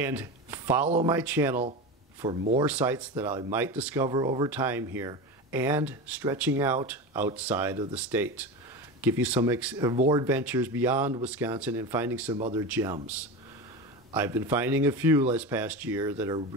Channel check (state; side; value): normal; both; correlation 0.24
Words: follow my channel for more sites that I might discover over time here and stretching out outside of the state. Give you some more adventures beyond Wisconsin and finding some other gems. I've been finding a few this past year that are